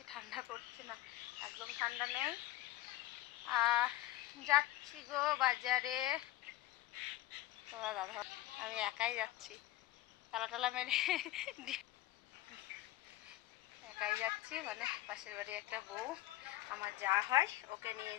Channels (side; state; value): right; quieter; 16.0 dB